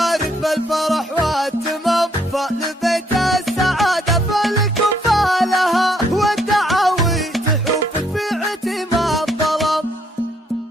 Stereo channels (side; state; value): both; normal; correlation 0.70